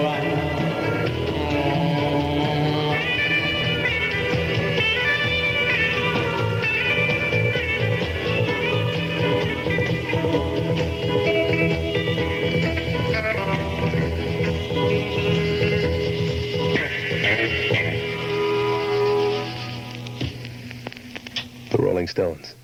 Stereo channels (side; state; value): both; identical; correlation 1.00